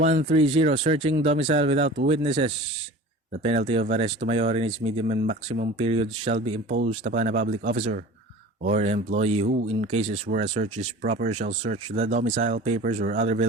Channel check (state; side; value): normal; both; correlation 0.39